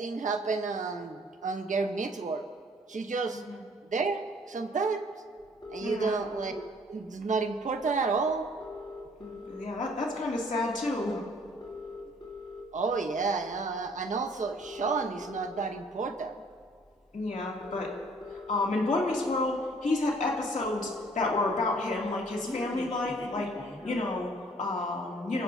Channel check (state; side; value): normal; both; correlation 0.58